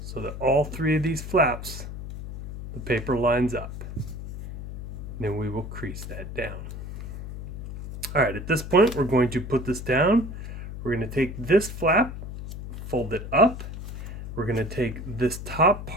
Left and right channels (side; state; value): left; noise; hum, 9 dB below the sound